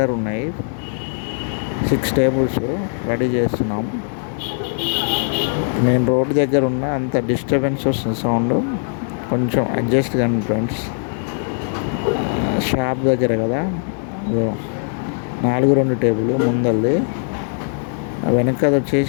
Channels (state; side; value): silent; right; digital silence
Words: ఉన్నాయి. 6 టేబుల్స్ రెడీ చేస్తున్నాం. నేను రోడ్డు దగ్గర ఉన్నా, అంత డిస్టర్బెన్స్ వస్తుంది సౌండ్, కొంచెం అడ్జస్ట్ కండి ఫ్రెండ్స్. షాప్ దగ్గర కదా. 4-2 టేబుల్ ముందల్ది, వెనకది